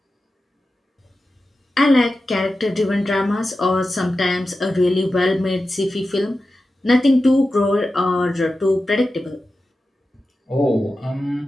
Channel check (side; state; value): both; normal; correlation 0.93